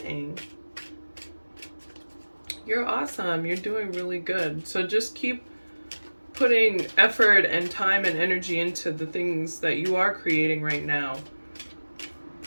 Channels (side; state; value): both; inverted; correlation -1.00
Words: You're awesome. You're doing really good. So just keep putting effort and time and energy into the things that you are creating right now.